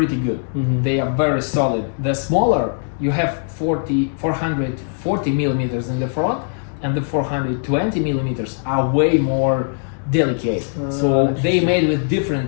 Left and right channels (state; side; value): silent; right; digital silence